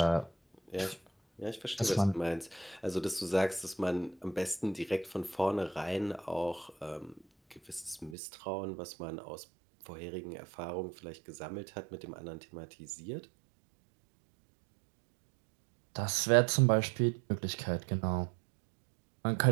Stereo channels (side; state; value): left; drops out; at 8.2 s